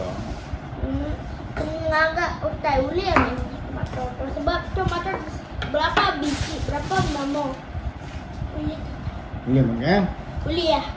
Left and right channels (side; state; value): both; identical; correlation 1.00